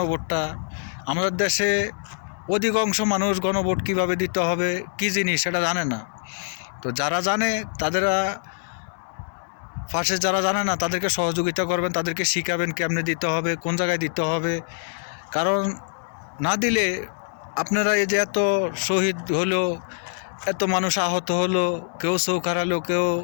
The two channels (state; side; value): silent; right; digital silence